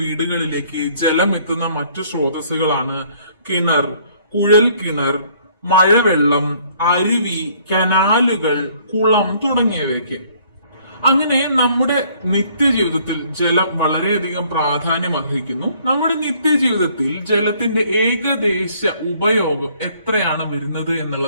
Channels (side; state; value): both; inverted; correlation -0.61